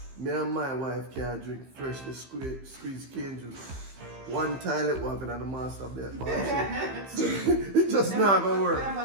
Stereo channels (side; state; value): left; late; 15 ms